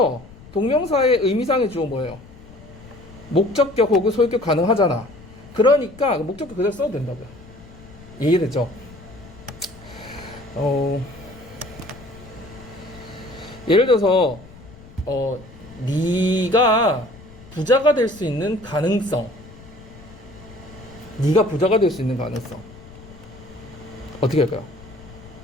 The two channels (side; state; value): left; noise; rumble, 20 dB below the sound